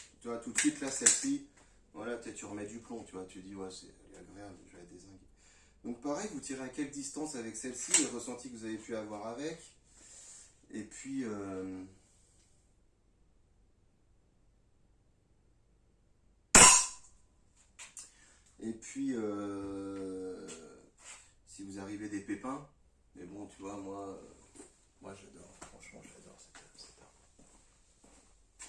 Tu vois, tout de suite là, celle-ci, voilà, peut-être tu remets du plomb, tu vois, tu dis, ouais, elle est agréable, je vais la dézinguer. Donc pareil, vous tirez à quelle distance avec celle-ci, le ressenti que vous avez pu avoir avec. Et puis. Et puis, si vous arrivez des pépins, mais bon, tu vois, moi j'adore, franchement, j'adore cette arme.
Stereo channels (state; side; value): identical; both; correlation 1.00